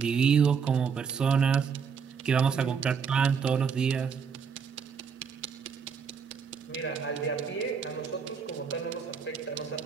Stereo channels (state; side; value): quieter; left; 6.3 dB